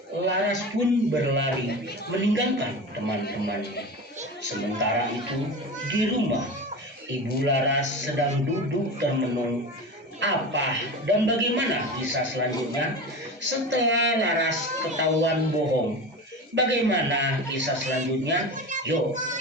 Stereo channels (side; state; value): both; normal; correlation 0.28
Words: Laras pun berlari meninggalkan teman-temannya. Sementara itu di rumah, Ibu Laras sedang duduk termenung Apa dan bagaimana kisah selanjutnya? Setelah Laras ketahuan bohong, bagaimana kisah selanjutnya? Yuk